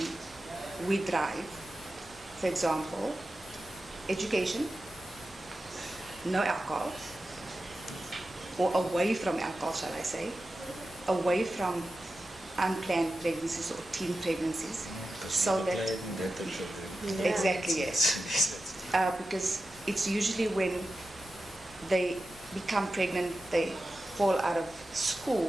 we drive, for example, education, no alcohol, or away from alcohol, shall I say, away from unplanned pregnancies or teen pregnancies. So that, exactly, yes. Because it's usually when they become pregnant, they fall out of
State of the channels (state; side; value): normal; both; correlation 0.92